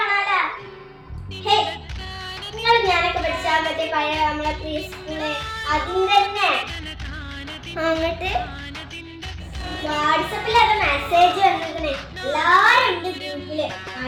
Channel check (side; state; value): both; identical; correlation 1.00